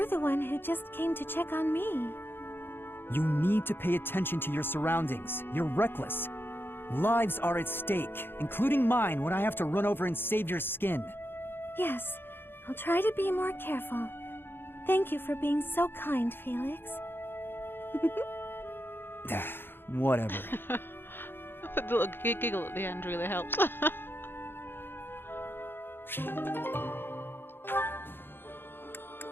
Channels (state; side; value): late; right; 0.10 ms